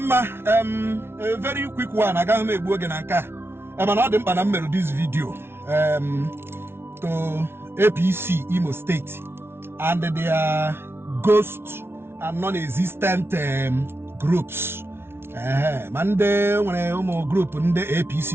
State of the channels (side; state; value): left; late; 0.12 ms